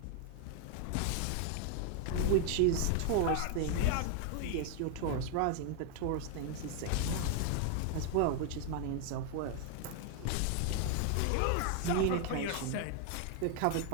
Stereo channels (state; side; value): different; both; correlation 0.01